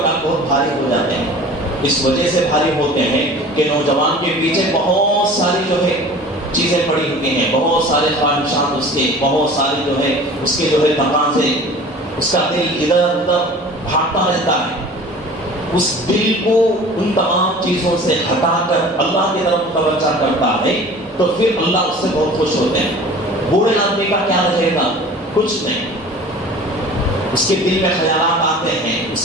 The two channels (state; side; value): normal; both; correlation 0.43